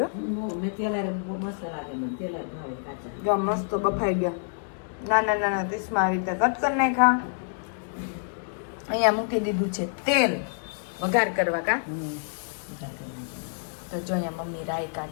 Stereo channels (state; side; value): silent; right; digital silence